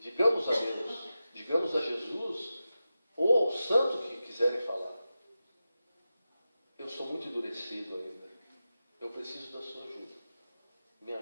Digamos a Deus, digamos a Jesus, ou ao santo que quiserem falar: eu sou muito endurecido ainda. Eu preciso da sua ajuda. Me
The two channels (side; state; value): both; inverted; correlation -0.92